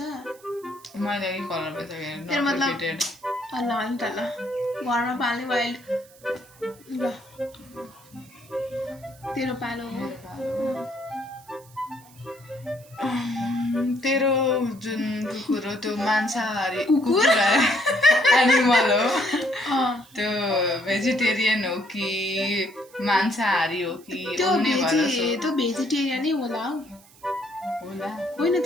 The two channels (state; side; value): noise; right; hiss, 25 dB below the sound